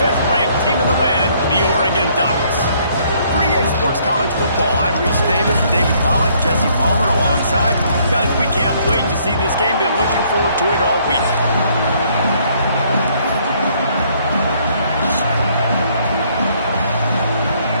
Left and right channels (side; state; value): both; inverted; correlation -0.65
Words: team in the land, the Oregon Ducks. For EA Sports College Football, I'm Reese Davis, David Pollack, Jesse Palmer alongside. Guys, we can't wait to see this game. Been looking forward to it all week.